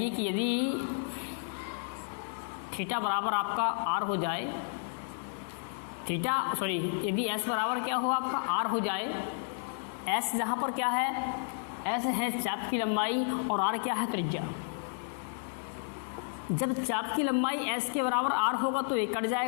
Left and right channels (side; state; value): right; silent; digital silence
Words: कि यदि थीटा बराबर आपका R हो जाए, यदि S बराबर क्या हो आपका R हो जाए, S जहाँ पर क्या है? S है चाप की लंबाई और R क्या है? त्रिज्या। जब चाप की लंबाई S के बराबर R होगा तो एक कट